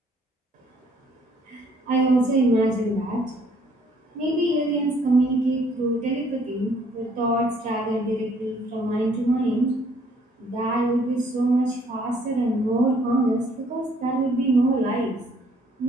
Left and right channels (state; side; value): normal; both; correlation 0.62